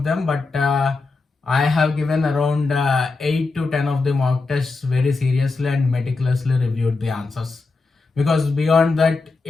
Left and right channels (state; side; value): quieter; right; 3.9 dB